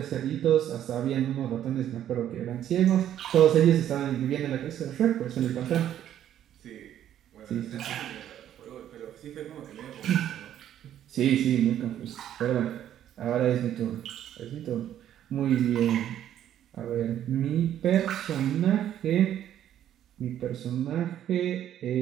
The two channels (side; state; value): left; quieter; 11.0 dB